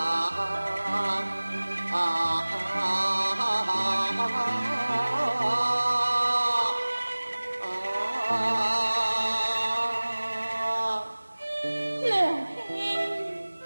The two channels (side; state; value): both; inverted; correlation -1.00